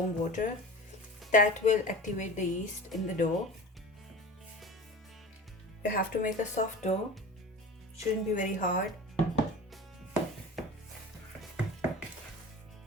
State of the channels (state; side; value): normal; both; correlation 0.35